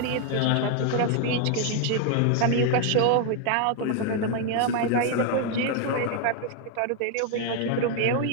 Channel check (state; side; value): different; both; correlation 0.00